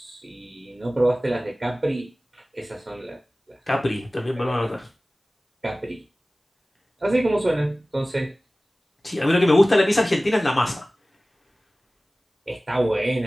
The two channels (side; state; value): both; normal; correlation 0.97